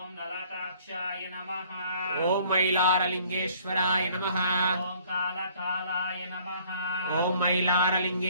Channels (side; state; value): both; inverted; correlation -0.58